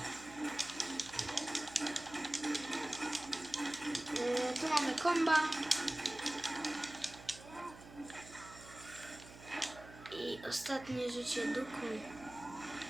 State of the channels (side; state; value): right; noise; hum, 17 dB below the sound